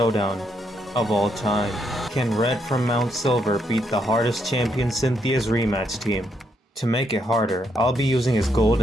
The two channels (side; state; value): both; normal; correlation 0.76